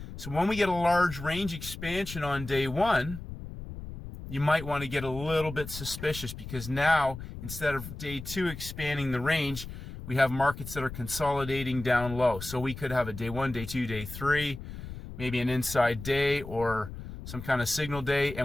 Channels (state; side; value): noise; left; rumble, 11 dB below the sound